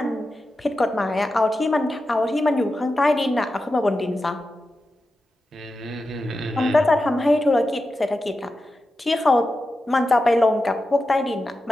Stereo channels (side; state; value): both; normal; correlation 0.91